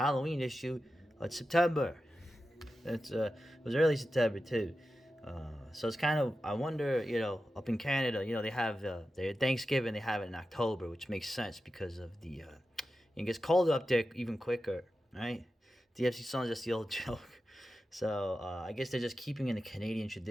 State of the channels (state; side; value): normal; both; correlation 0.92